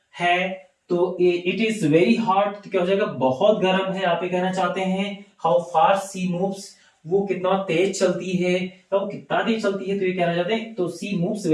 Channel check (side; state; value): both; identical; correlation 1.00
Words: है। तो इट इज वेरी हॉट, तो क्या हो जाएगा? बहुत गर्म है, आप ये कहना चाहते हैं। हाउ फास्ट सी मूव्स, वो कितना तेज चलती है, तो वो कितना तेज चलती है, तो ये कहना चाहते हैं। तो सी मूव्स